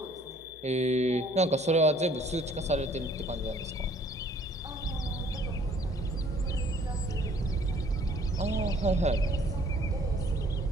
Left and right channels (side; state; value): both; normal; correlation 0.58